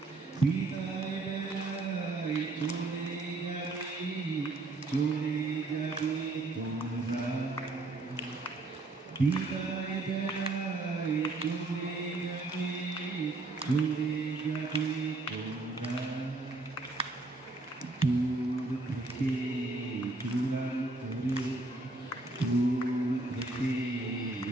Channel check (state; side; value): quieter; left; 3.1 dB